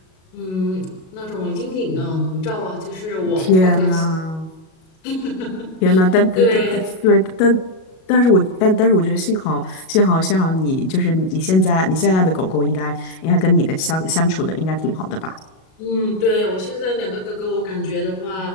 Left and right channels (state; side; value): late; right; 37 ms